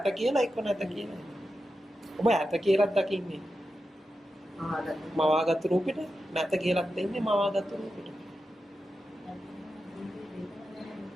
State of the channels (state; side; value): normal; both; correlation 0.90